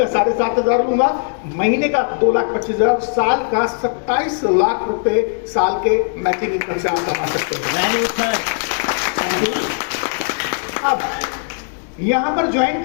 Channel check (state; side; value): silent; right; digital silence